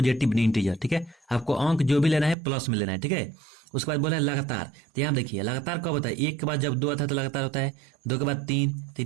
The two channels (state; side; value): drops out; left; at 2.4 s